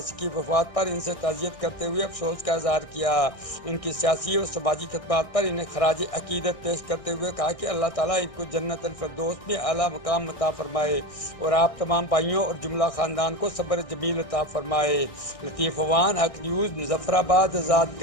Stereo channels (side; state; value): right; late; 1.6 ms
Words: کی وفات پر ان سے تعزیت کرتے ہوئے افسوس کا اظہار کیا۔ ان کی سیاسی اور سماجی خدمات پر انہیں خراج عقیدت پیش کرتے ہوئے کہا کہ اللہ تعالیٰ ان کو جنت الفردوس میں اعلیٰ مقام عطا فرمائے اور آپ تمام بھائیوں اور جملہ خاندان کو صبر جمیل عطا فرمائے۔ لطیف اوان، حق نیوز، مظفر آباد، آزاد